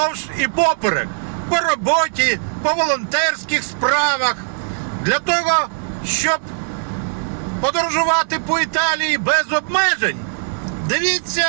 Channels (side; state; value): left; silent; digital silence